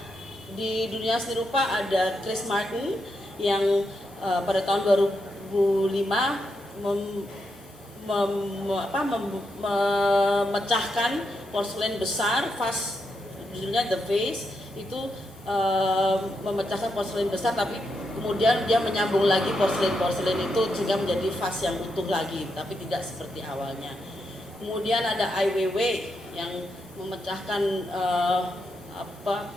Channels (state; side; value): normal; both; correlation 0.83